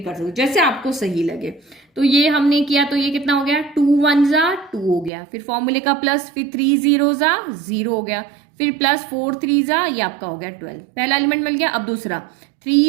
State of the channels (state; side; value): drops out; left; at 5.1 s